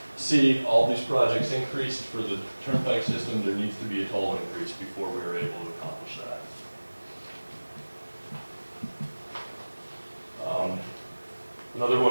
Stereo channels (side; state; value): both; inverted; correlation -1.00